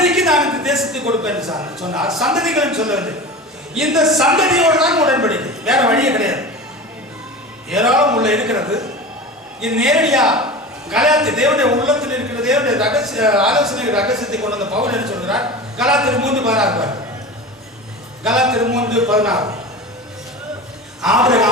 நான் இந்த தேசத்தை கொடுப்பேன் சொன்னார். சந்ததிகள் சொல்லவில்லை, இந்த சந்ததியோடு தான் உடன்படிக்கை, வேற வழியே கிடையாது. ஏராளம் உள்ள இருக்கிறது. இது நேரடியா கலாத்தியர் தேவனுடைய உள்ளத்தில் இருக்கிற தேவனுடைய ரகசிய ஆலோசனை ரகசியத்தை கொண்டு வந்த பவுல் என்ன சொல்கிறார்? கலாத்தியர் 3:16. கலாத்தியர் 3:16.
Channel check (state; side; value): normal; both; correlation 0.31